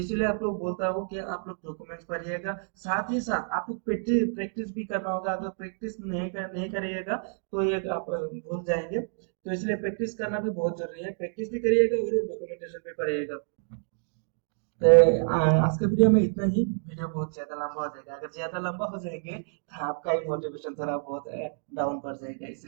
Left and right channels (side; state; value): left; silent; digital silence